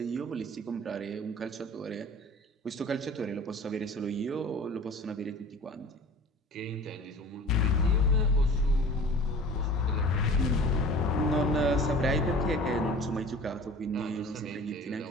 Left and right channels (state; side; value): normal; both; correlation 0.43